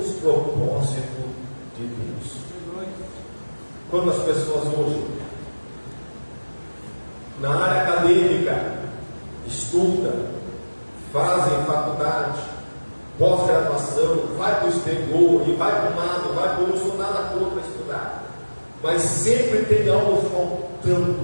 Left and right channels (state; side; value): inverted; both; correlation -1.00